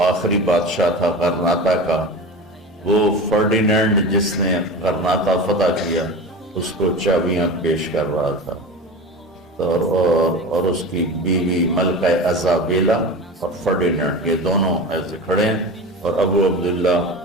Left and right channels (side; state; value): both; normal; correlation 0.30